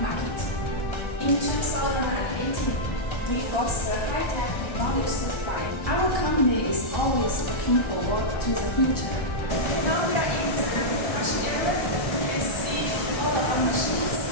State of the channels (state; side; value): late; right; 1.3 ms